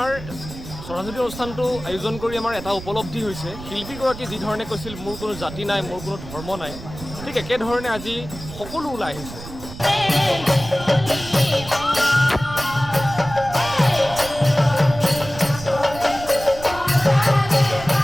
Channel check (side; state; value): right; noise; rumble, 13 dB below the sound